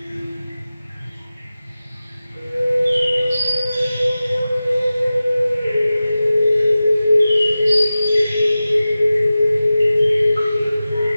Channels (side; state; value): both; inverted; correlation -0.95